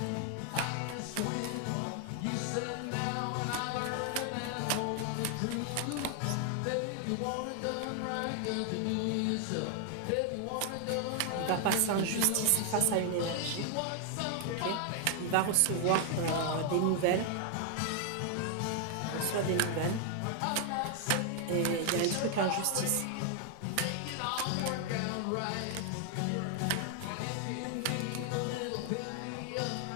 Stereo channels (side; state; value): both; different; correlation 0.00